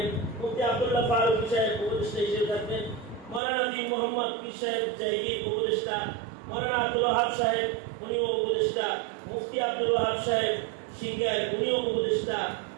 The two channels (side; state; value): left; drops out; at 3.4 s